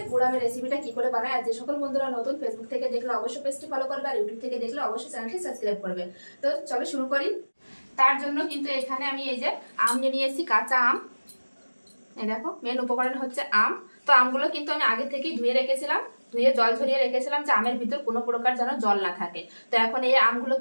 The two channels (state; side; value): inverted; both; correlation -1.00